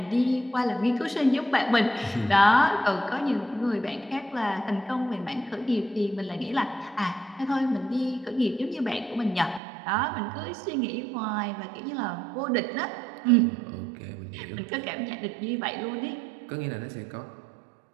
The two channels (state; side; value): drops out; left; at 9.6 s